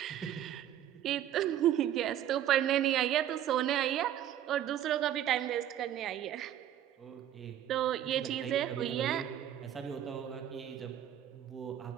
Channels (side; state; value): left; quieter; 11.1 dB